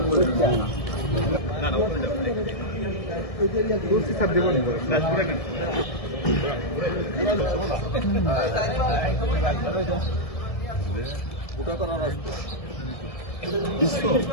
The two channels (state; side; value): late; right; 1.7 ms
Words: স্যার দেবো ওটা করার আসবে